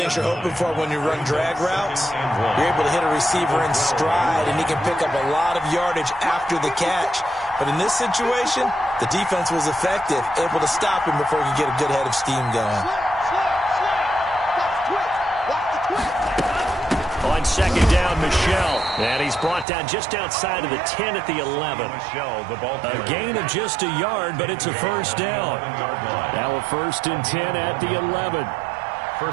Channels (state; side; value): drops out; left; at 19.7 s